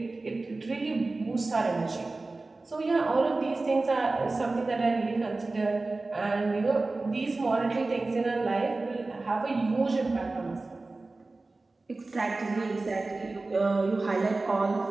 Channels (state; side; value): quieter; left; 3.3 dB